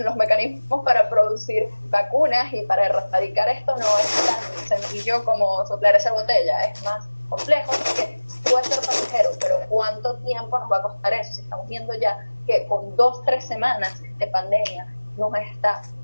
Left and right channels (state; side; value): inverted; both; correlation -1.00